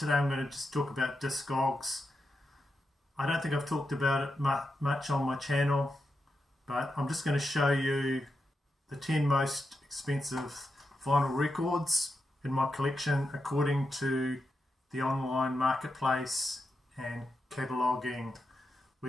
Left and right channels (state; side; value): normal; both; correlation 0.87